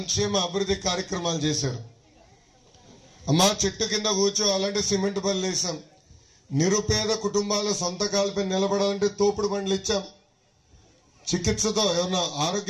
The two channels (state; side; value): identical; both; correlation 1.00